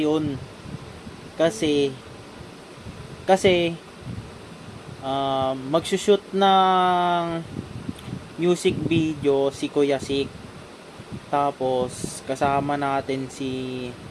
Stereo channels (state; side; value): identical; both; correlation 1.00